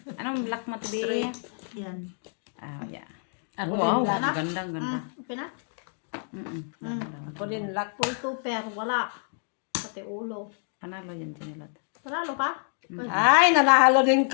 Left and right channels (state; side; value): silent; right; 56 dB below the other